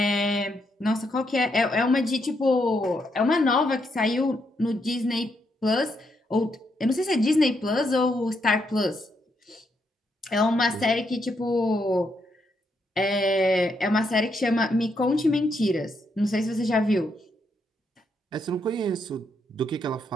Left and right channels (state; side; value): normal; both; correlation 0.78